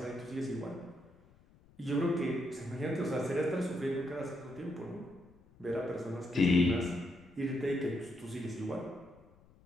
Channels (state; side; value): noise; left; rumble, 26 dB below the sound